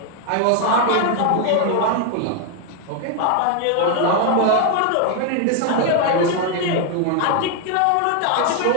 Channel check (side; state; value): both; different; correlation 0.01